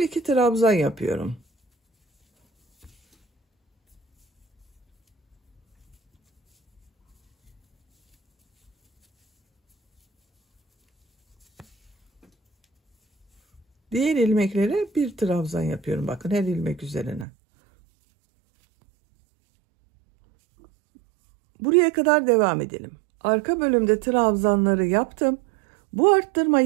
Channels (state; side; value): drops out; left; at 17.2 s